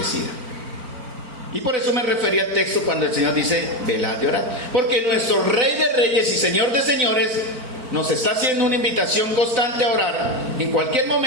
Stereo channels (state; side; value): late; left; 4.4 ms